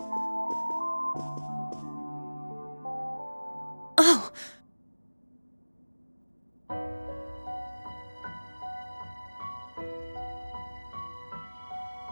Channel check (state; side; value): inverted; both; correlation -1.00